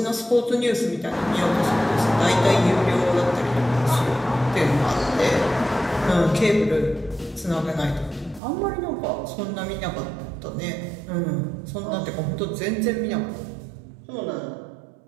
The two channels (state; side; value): drops out; left; at 8.4 s